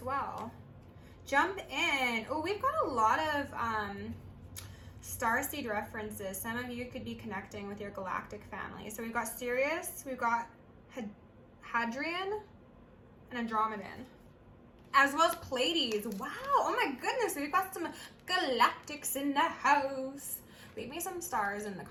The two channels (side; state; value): both; identical; correlation 1.00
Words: well. Jump in. Oh, we've got a lot of starseed references. Some of you could be connecting with your galactic family. So we've got Sirius, we've got Hadrian, and Andromedan, as well as Pleiades. Wow, oh my goodness, we've got some galactics in the house. Leave me some stars in the